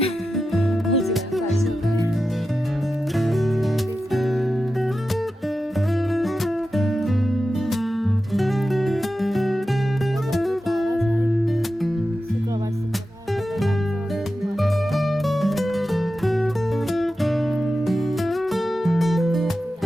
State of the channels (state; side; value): normal; both; correlation 0.91